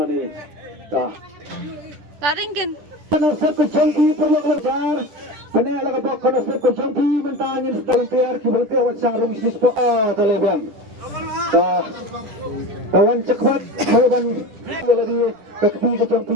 dah Taringin. konsep kejangki perlu belajar benar lah keba konsep kejangki mentangin dalam tiar kiberti awak sarung bisnis po terlebih kawan cepat kawan lagi kekti kejampi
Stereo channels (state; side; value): late; left; 10 ms